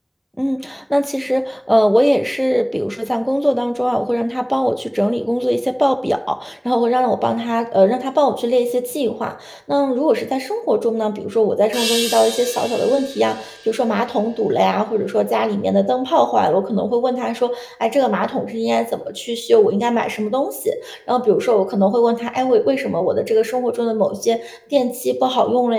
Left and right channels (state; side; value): identical; both; correlation 1.00